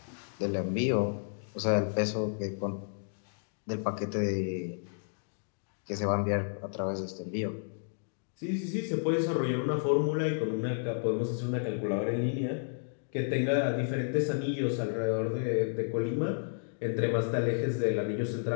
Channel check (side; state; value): right; silent; digital silence